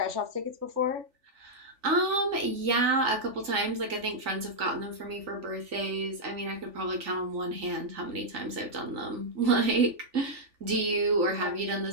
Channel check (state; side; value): late; left; 3.4 ms